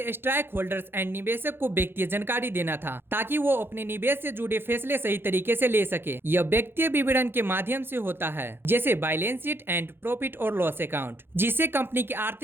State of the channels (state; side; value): late; left; 0.10 ms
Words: stake holders and निवेशक को व्यक्तिगत जानकारी देना था, ताकि वो अपने निवेश से जुड़े फैसले सही तरीके से ले सके। यह व्यक्तिगत विवरण के माध्यम से होता है, जैसे बैलेंस शीट एंड प्रॉफिट और लॉस अकाउंट, जिससे कंपनी की